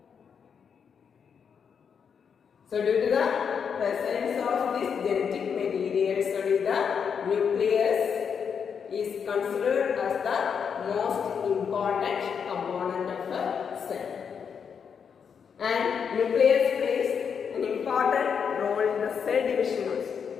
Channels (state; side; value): quieter; right; 6.8 dB